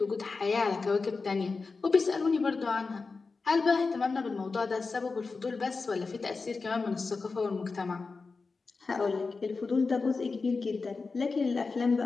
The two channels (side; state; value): right; quieter; 4.3 dB